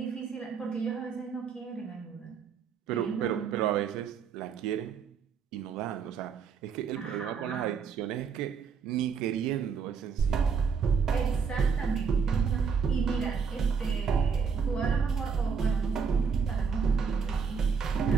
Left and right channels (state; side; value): quieter; left; 6.1 dB